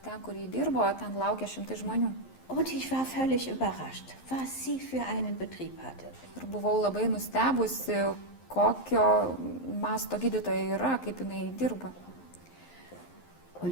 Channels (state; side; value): late; right; 11 ms